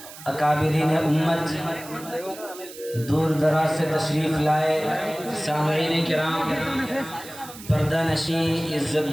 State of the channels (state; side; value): noise; right; hiss, 16 dB below the sound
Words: اکابرین امت، دور دراز سے تشریف لائے سامعین کرام، پردہ نشین،